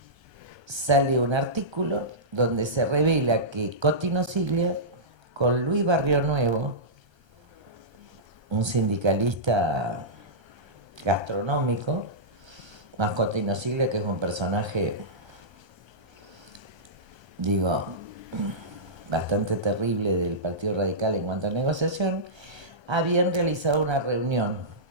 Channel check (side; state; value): left; late; 1.3 ms